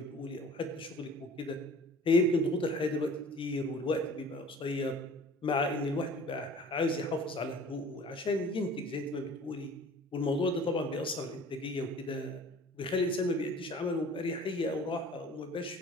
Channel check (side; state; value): both; normal; correlation 0.46